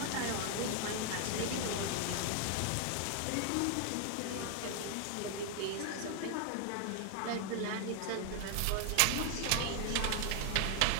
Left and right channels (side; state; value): both; different; correlation 0.00